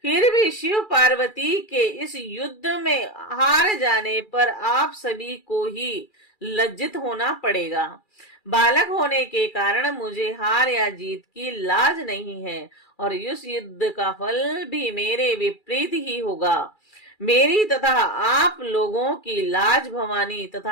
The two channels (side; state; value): right; late; 2.3 ms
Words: फिर भी शिव पार्वती के इस युद्ध में हार जाने पर आप सभी को ही लज्जित होना पड़ेगा। बालक होने के कारण मुझे हार या जीत की लाज नहीं है और इस युद्ध का फल भी मेरे विपरीत ही होगा। मेरी तथा आप लोगों की लाज भवानी